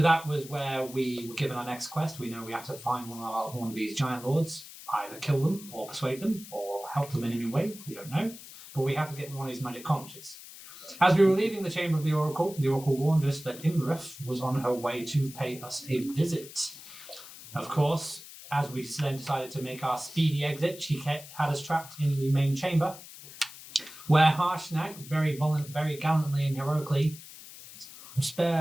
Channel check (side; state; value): left; noise; hiss, 16 dB below the sound